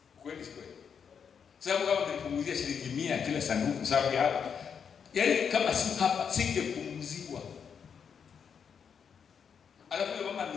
Kweli kweli. Sababu kama nilipunguzia shilingi 100 kila sanduku sababu ya hapa. Yaani kama si hapa singepunguzwa. Alafu mama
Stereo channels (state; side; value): quieter; right; 7.0 dB